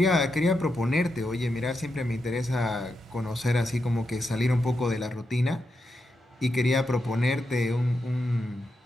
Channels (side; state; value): both; normal; correlation 0.85